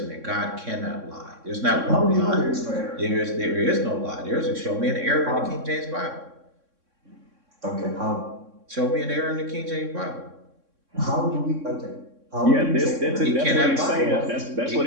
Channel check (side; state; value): left; late; 3.6 ms